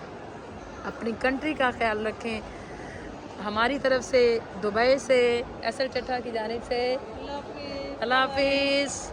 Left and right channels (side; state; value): both; identical; correlation 1.00